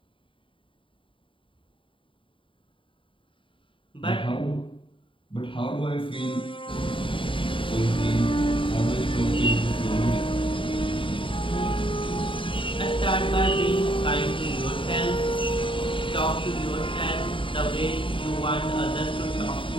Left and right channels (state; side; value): late; right; 0.25 ms